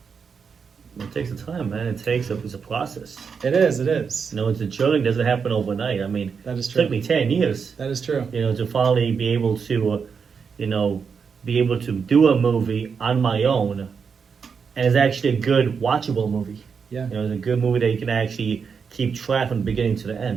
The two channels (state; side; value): quieter; left; 6.0 dB